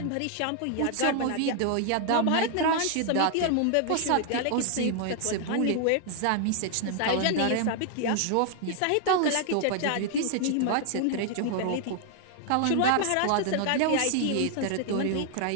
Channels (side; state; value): both; different; correlation 0.00